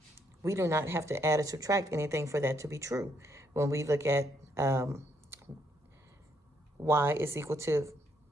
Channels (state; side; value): normal; both; correlation 0.73